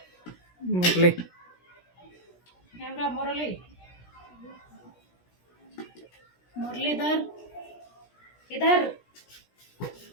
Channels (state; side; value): late; right; 17 ms